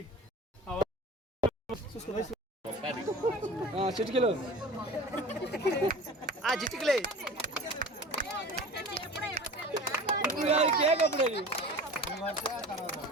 చిటికలు చిటికలే కేక్ అప్పుడు అది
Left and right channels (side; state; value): both; normal; correlation 0.38